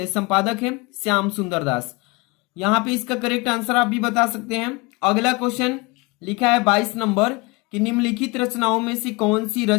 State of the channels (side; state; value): right; quieter; 26.1 dB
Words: संपादक है? श्याम सुंदर दास। यहाँ पे इसका करेक्ट आंसर आप भी बता सकते हैं। अगला क्वेश्चन लिखा है 22 नंबर कि निम्नलिखित रचनाओं में से कौन सी